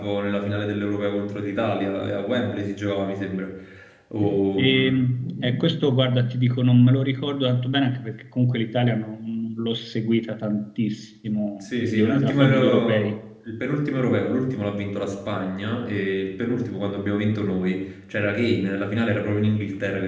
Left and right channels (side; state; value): both; identical; correlation 1.00